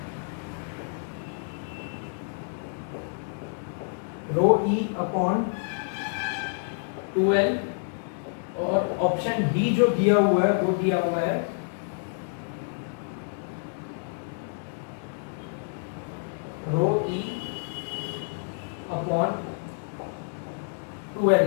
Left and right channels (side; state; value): right; silent; digital silence